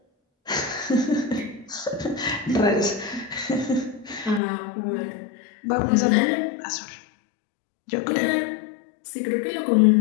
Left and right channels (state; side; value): drops out; right; at 4.4 s